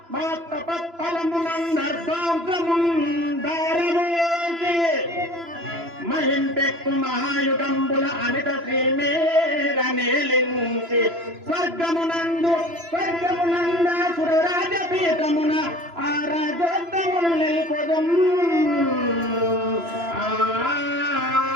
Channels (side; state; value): left; late; 3.0 ms